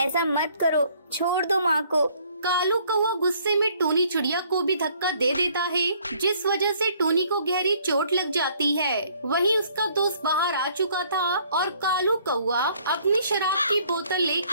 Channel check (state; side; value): inverted; both; correlation -0.61